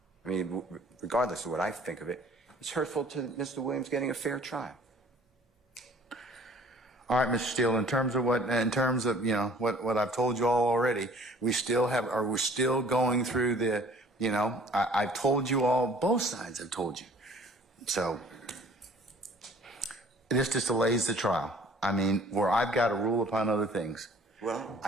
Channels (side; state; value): both; normal; correlation 0.53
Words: I mean, regardless of what I think of it, it's hurtful to Mr. Williams getting a fair trial. All right, Mr. Steele, in terms of what I've told you all already, we're still going through the, I've told you all, both sides have told you. So this just delays the trial. I mean, where I've got to rule upon other things. Well,